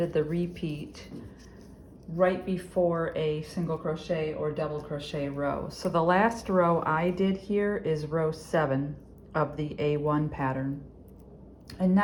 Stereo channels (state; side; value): identical; both; correlation 1.00